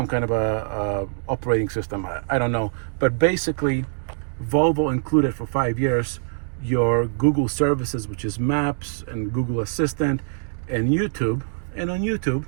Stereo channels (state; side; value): silent; left; digital silence